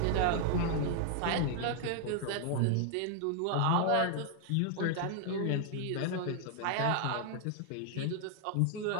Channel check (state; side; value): different; both; correlation 0.00